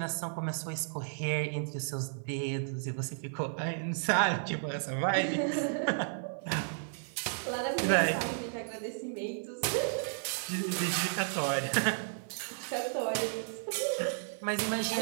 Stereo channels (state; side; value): silent; left; digital silence